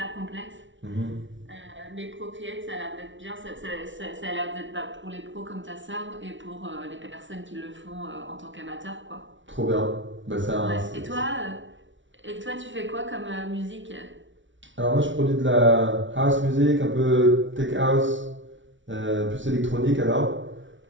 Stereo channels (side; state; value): left; late; 0.55 ms